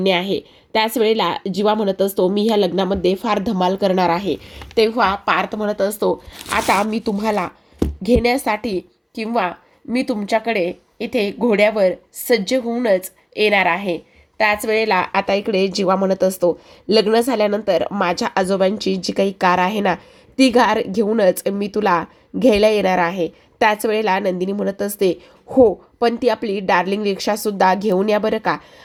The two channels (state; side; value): identical; both; correlation 1.00